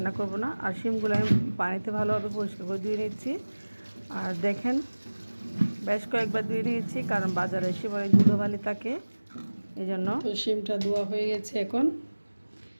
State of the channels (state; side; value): inverted; both; correlation -1.00